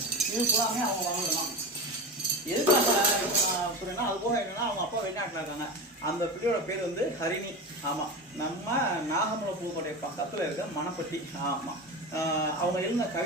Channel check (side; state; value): both; normal; correlation 0.25